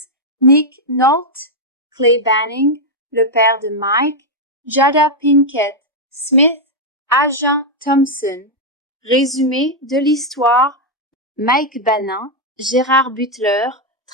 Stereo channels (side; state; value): both; normal; correlation -0.01